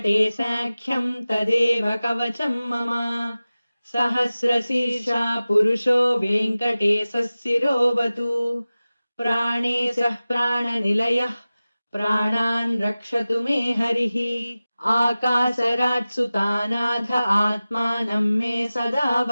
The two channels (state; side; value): inverted; both; correlation -0.97